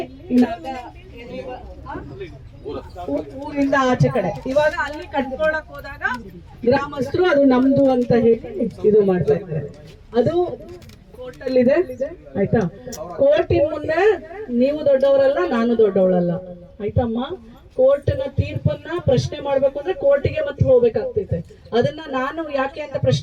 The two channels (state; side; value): identical; both; correlation 1.00